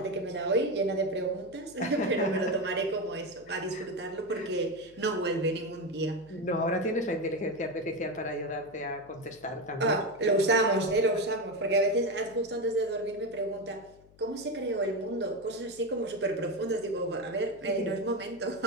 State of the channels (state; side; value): noise; left; hum, 26 dB below the sound